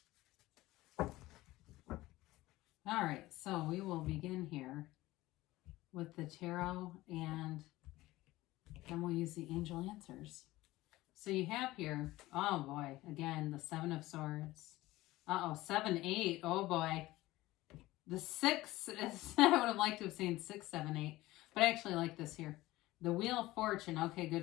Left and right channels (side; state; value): right; quieter; 17.9 dB